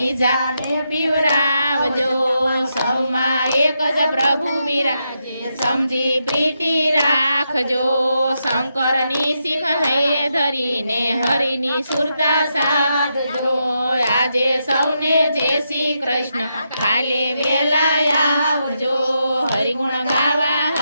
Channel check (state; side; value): inverted; both; correlation -0.83